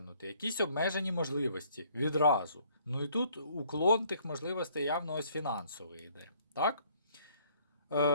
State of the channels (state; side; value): inverted; both; correlation -0.62